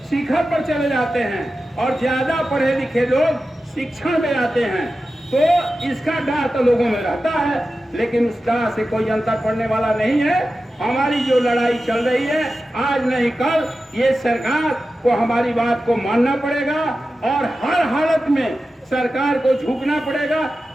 शिखर पर चले जाते हैं और ज्यादा पढ़े लिखे लोग शिक्षण में आते हैं। तो इसका डर तो लोगों में रहता है, लेकिन उस डर से कोई अंतर पड़ने वाला नहीं है। हमारी जो लड़ाई चल रही है, आज नहीं कल ये सरकार को हमारी बात को मानना पड़ेगा और हर हालत में सरकार को झुकना पड़ेगा।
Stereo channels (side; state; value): both; normal; correlation 0.93